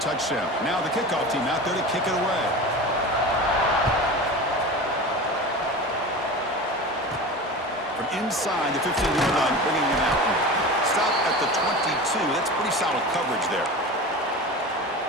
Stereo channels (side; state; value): both; normal; correlation 0.31